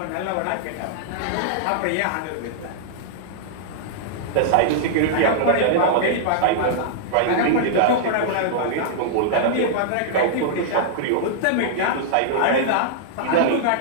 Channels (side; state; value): both; different; correlation -0.02